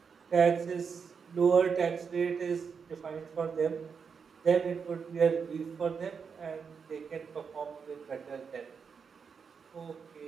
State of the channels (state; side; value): quieter; left; 6.1 dB